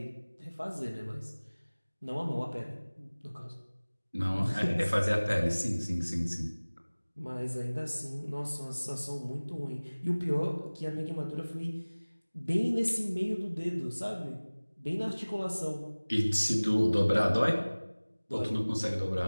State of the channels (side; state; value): both; inverted; correlation -1.00